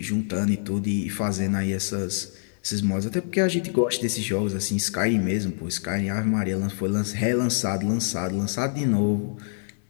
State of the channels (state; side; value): silent; right; 60 dB below the other